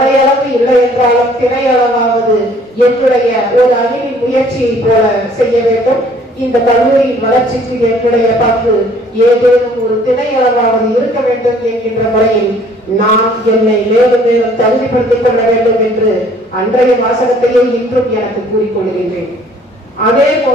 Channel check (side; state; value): both; normal; correlation 0.57